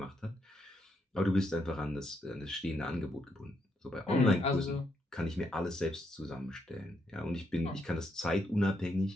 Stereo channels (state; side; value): normal; both; correlation 0.78